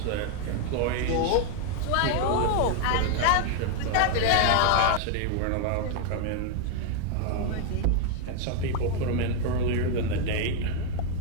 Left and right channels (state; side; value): different; both; correlation 0.00